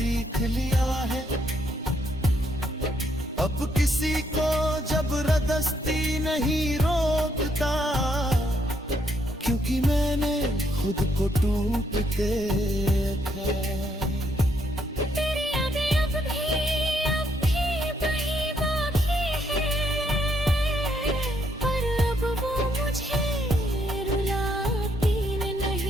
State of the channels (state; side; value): normal; both; correlation 0.74